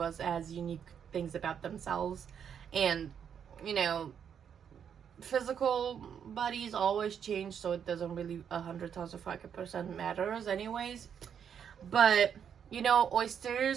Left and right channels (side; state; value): left; quieter; 8.0 dB